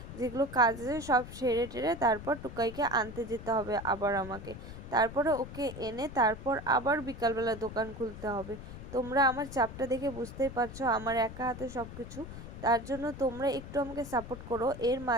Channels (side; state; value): left; noise; rumble, 12 dB below the sound